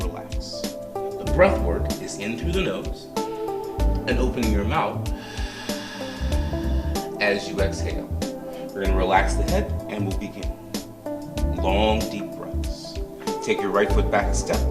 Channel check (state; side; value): identical; both; correlation 1.00